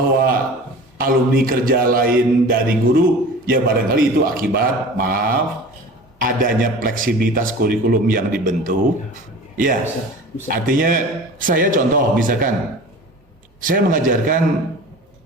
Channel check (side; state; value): both; normal; correlation 0.39